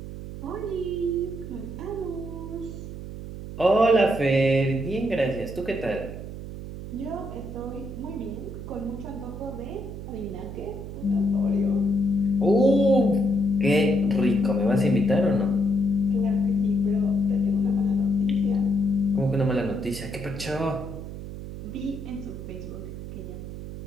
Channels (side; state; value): right; noise; hum, 10 dB below the sound